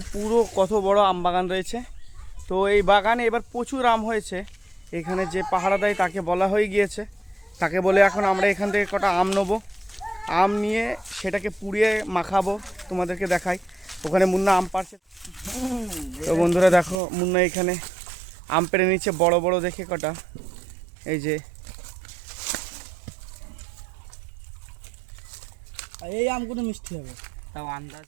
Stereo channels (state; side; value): drops out; left; at 17.0 s